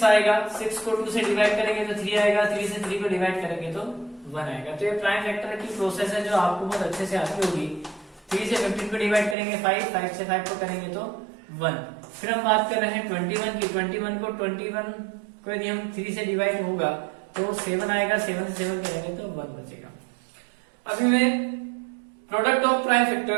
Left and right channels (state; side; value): drops out; left; at 9.3 s